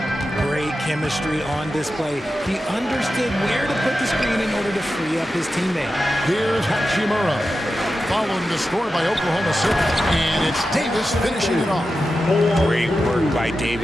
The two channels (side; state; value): both; normal; correlation 0.91